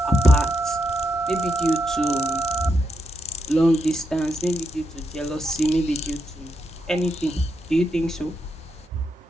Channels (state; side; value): normal; both; correlation 0.82